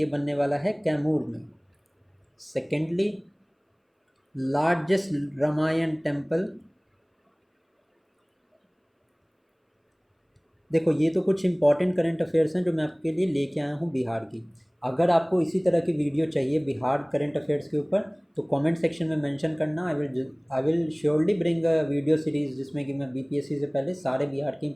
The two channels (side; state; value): both; identical; correlation 1.00